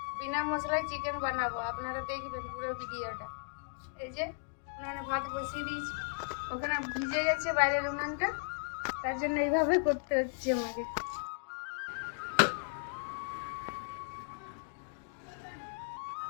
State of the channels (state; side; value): silent; right; digital silence